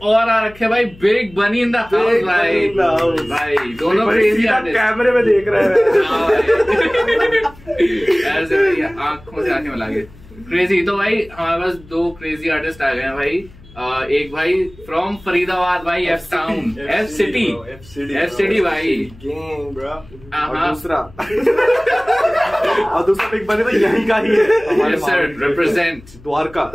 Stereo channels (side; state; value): left; noise; hum, 22 dB below the sound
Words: और आ रखे हैं भाई बिग बनी इन द हाउस भाई। भाई दोनों क्रेजी आर्टिस्ट कैमरे में देख रहे हैं। ऐसे भाई आंखों से आंखें मिला के क्रेजी। तो भाई हमारे पास दो क्रेजी आर्टिस्ट आ गए हैं भाई। एक भाई फ्रॉम फरीदाबाद भाई, एफ टाउन, एफ सिटी भाई। और दूसरा बिग बनी तो यहीं का ही है, रिप्रेजेंट द्वारका।